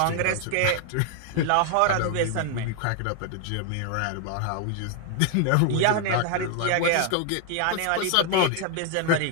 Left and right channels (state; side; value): different; both; correlation 0.00